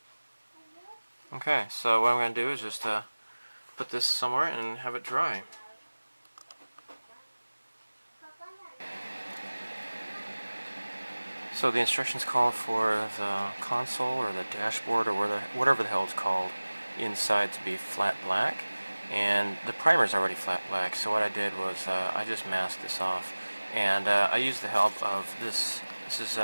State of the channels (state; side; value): inverted; both; correlation -1.00